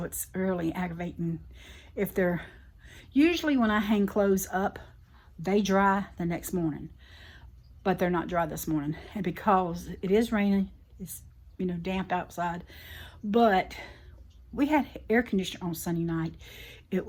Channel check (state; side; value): identical; both; correlation 1.00